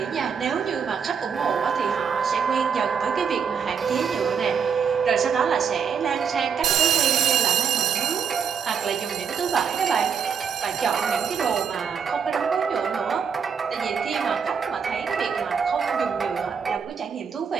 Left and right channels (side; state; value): left; quieter; 6.7 dB